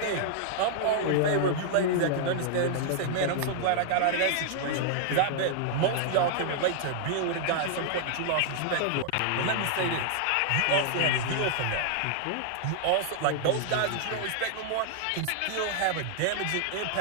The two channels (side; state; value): both; different; correlation -0.01